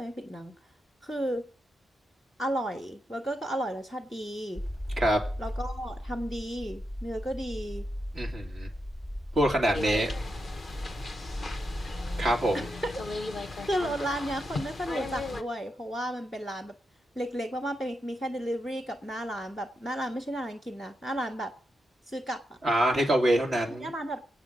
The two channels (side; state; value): both; normal; correlation 0.85